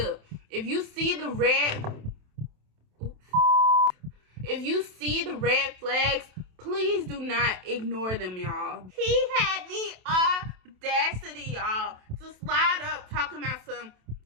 If you see the red flags, please do not ignore them, y'all. He had the audacity, y'all, to slide up talking about some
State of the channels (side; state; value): left; late; 27 ms